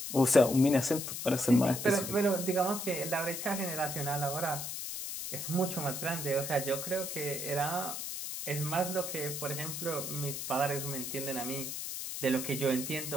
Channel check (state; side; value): noise; left; hiss, 5 dB below the sound